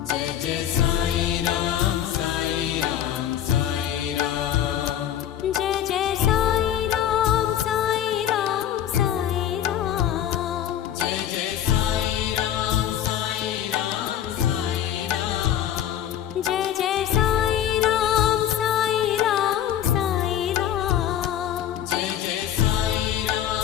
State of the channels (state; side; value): quieter; right; 10.6 dB